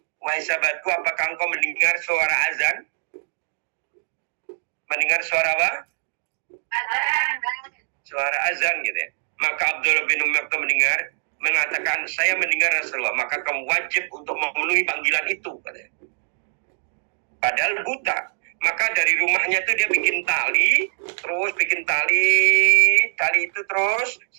wahai sahabatku, apakah engkau mendengar suara azan? Mendengar suara apa? Suara azan gitu ya. Maka Abdullah bin Maktum mengatakan, saya mendengar Rasulullah, maka kamu wajib untuk memenuhi panggilan itu, katanya. Padahal buta. Maka dari rumahnya itu dia bikin tali itu terus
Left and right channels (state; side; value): silent; left; digital silence